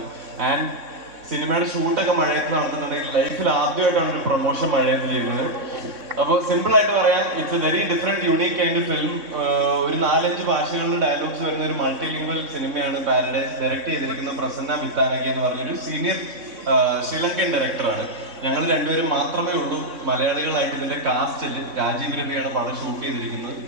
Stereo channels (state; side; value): late; left; 3.6 ms